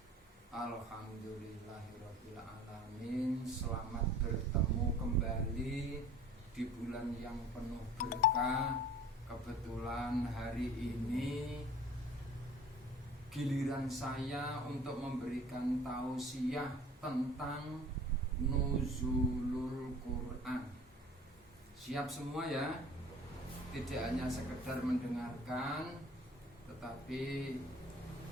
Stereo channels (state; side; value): normal; both; correlation 0.45